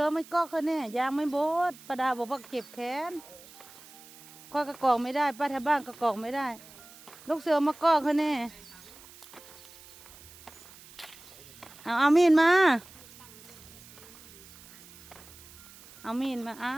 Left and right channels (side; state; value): right; noise; hiss, 20 dB below the sound